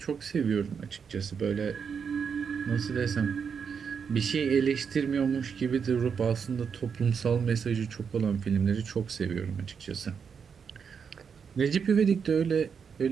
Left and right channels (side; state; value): left; quieter; 6.5 dB